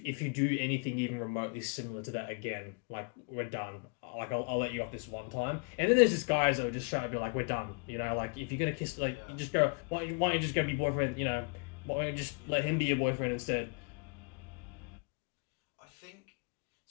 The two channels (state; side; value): quieter; right; 37.5 dB